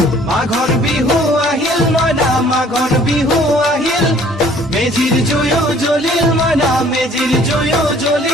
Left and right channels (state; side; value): normal; both; correlation 0.56